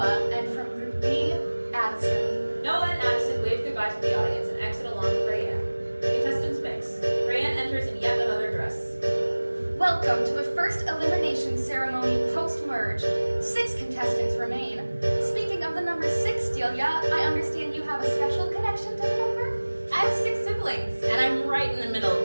and from Group B, Addison. Noah and Addison wave goodbye to the audience and exit along with Rayanne. The contestants mix. Rayanne enters in yet another dress. Welcome to the first elimination ceremony post-merge. 6 contestants remain. Speaking of the number 6, Delia, I understand you have a special connection to the number? I have 6 siblings, and I'm right in the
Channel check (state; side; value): inverted; both; correlation -1.00